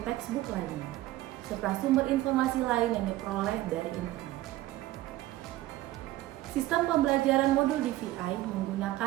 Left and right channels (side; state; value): left; quieter; 16.2 dB